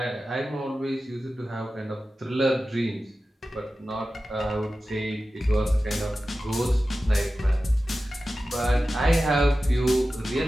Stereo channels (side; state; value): both; normal; correlation 0.94